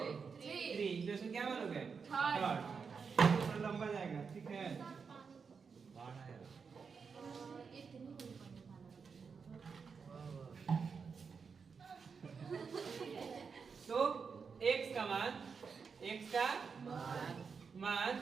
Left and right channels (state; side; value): quieter; left; 5.6 dB